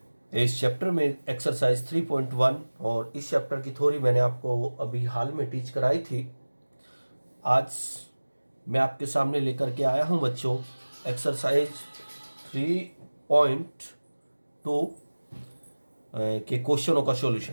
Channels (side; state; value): both; inverted; correlation -1.00